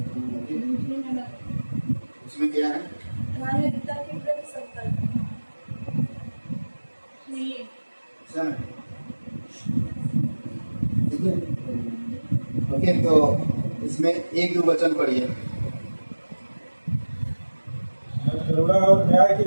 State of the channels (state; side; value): inverted; both; correlation -1.00